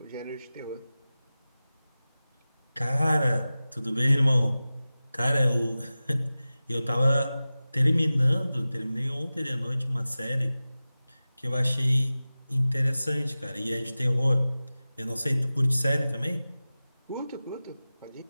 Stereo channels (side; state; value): both; inverted; correlation -0.96